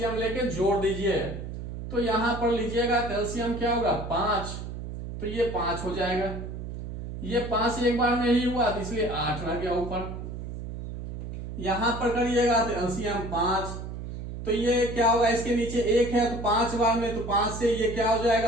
लेके जोड़ दीजिए तो यहां पर लीजिएगा एलसीएम क्या होगा 5, तो ये 5 हो जाएगा। ये 5 एक बार में ही हुआ तो इसलिए 8 रह गया ऊपर। यहां पर करिएगा तो एलसीएम 5, तो ये क्या होगा इसके नीचे 1 है तो 5 बार में, तो 5 से ये क्या हो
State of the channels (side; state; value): right; noise; hum, 8 dB below the sound